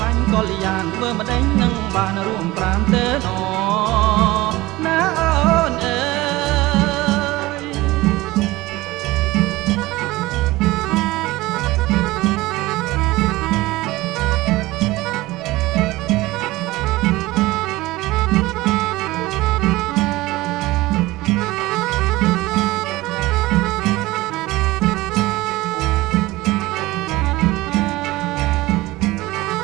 ឡាញ់កល្យានធ្វើម្ដេចនឹងបានរួមប្រាំទៅណណាអូនអើយ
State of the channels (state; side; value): quieter; left; 19.2 dB